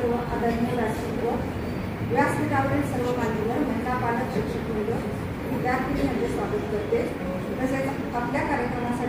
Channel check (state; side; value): identical; both; correlation 1.00